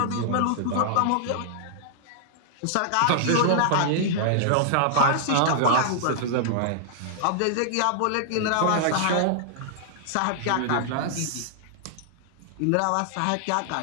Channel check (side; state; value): both; different; correlation -0.01